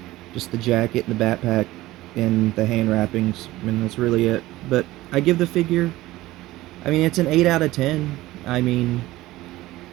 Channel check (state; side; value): quieter; left; 17.4 dB